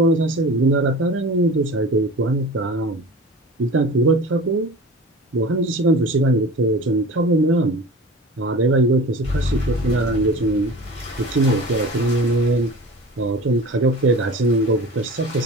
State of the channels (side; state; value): both; normal; correlation 0.37